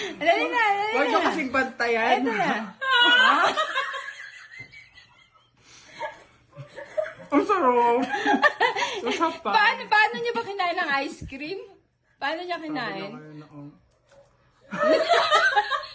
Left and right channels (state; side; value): identical; both; correlation 1.00